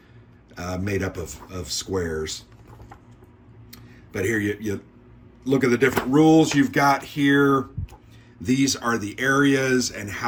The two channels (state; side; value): identical; both; correlation 1.00